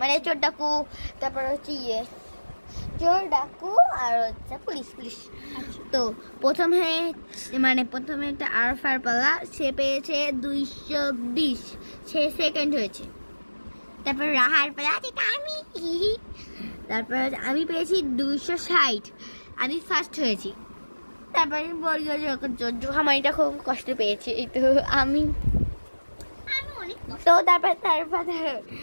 চোর ডাকু, তারপর হচ্ছে চোর ডাকু আর হচ্ছে পুলিশ পুলিশ। তো প্রথমে একটা আরফার পালা, সে পেয়েছে 220, সে সেকেন্ড হয়েছে। তারপর রাহার পালা, যেটা আমি, তারপর আমি পেয়েছি 260, আমি ফার্স্ট হয়েছি। তারপরে জোহামানিটা খুব কষ্ট পেয়েছে, তো আমি অনেক তো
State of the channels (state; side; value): inverted; both; correlation -1.00